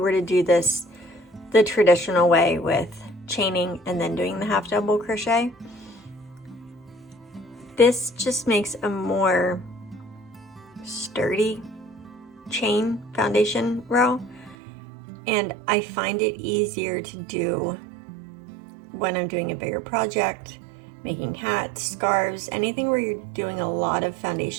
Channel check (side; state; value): left; drops out; at 14.6 s